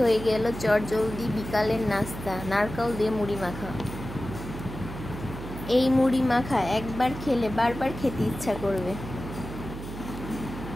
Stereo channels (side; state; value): right; noise; hum, 10 dB below the sound